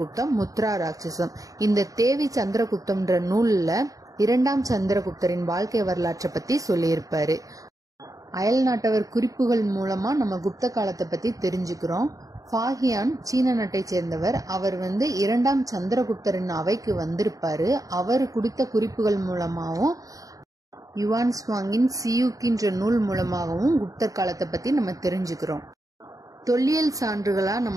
முத்ரா ராட்சசம். இந்த தேவி சந்திரகுப்தம்ன்ற நூல்ல 2ஆம் சந்திரகுப்தரின் வாழ்க்கை வரலாற்றை பத்தி சொல்லியிருப்பாரு. அயல் நாட்டவர் குறிப்புகள் மூலமா நம்ம குப்த காலத்தை பத்தி தெரிஞ்சுக்கிறோம். ஃபாஹியான் சீன நாட்டை சேர்ந்தவர். அவர் 2ஆம் சந்திரகுப்தரின் அவைக்கு வந்திருப்பாரு. அவர் கொடுத்த குறிப்புகள் மூலமாகவும் யுவான் ஸ்வாங்கின் சியூக்கின்ற நூல் மூலமாகவும் குப்தர் காலத்தை பத்தி நம்ம தெரிஞ்சுக்கிறோம். தொல்லியல் சான்றுகளா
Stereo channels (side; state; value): left; late; 0.17 ms